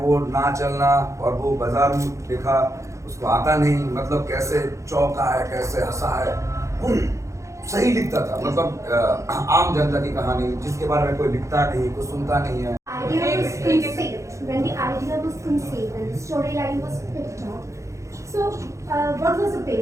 ना चलना, और वो बाजार में लिखा, उसको आता नहीं, मतलब कैसे चौंका है, कैसे हंसा है, वो सही लिखता था. मतलब आम जनता की कहानी जिसके बारे में कोई लिखता नहीं, कोई सुनता नहीं है. Idea was instinct. When the idea storyline was picked up. So, what was the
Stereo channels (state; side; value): late; left; 0.15 ms